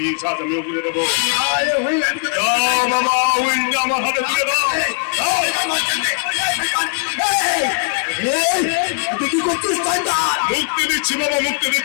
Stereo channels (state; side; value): quieter; right; 39.8 dB